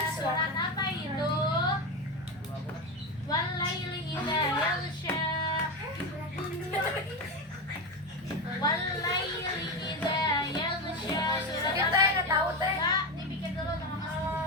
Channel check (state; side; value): normal; both; correlation 0.16